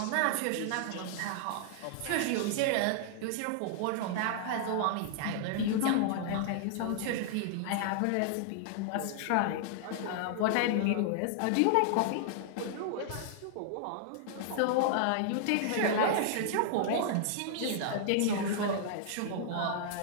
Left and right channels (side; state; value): both; different; correlation -0.01